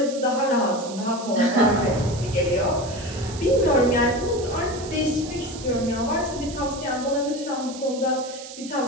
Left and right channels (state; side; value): noise; right; hiss, 14 dB below the sound